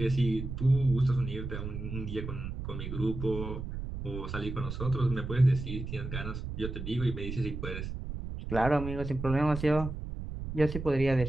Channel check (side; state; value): right; noise; rumble, 7 dB below the sound